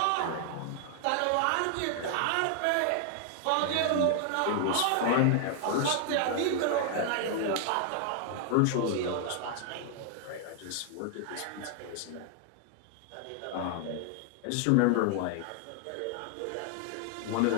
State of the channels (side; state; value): both; different; correlation 0.00